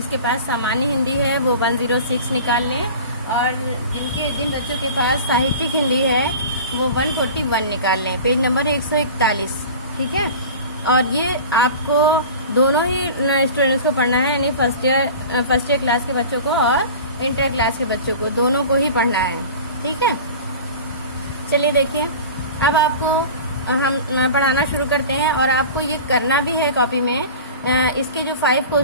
पास सामान्य हिंदी है वो 106 निकाल लें, और जिन बच्चों के पास साहित्यिक हिंदी है वो 141 निकाल लें। पेज नंबर 141, ठीक है। और ये आपको दोनों ही स्टूडेंट्स को पढ़ना है, यानी फर्स्ट ईयर क्लास के बच्चों को और इंटर क्लास के बच्चों को, दोनों को ही पढ़ना है, ठीक है। चलिए देखिए, अब आपको हम पढ़ाना शुरू करते हैं, और आपको ये करना भी है कॉपी में। इसके जो 5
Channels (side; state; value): both; inverted; correlation -0.37